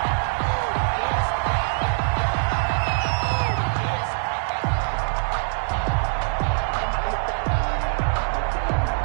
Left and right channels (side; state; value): left; silent; digital silence